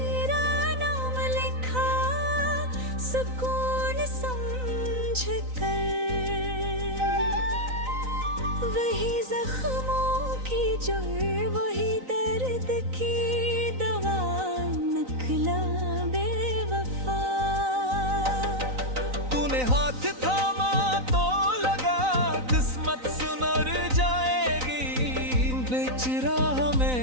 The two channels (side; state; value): left; late; 3.9 ms